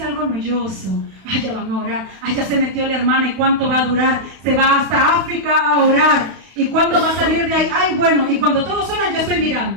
algo noyoso. Ay, ya van a orar. Ay, ya se metió la hermana. ¿Y cuánto va a durar? Se va hasta África a orar. ¿Y cuándo va a salir de ahí? Ay, bueno. Y cuando todos oran, yo estoy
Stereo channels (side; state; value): left; late; 32 ms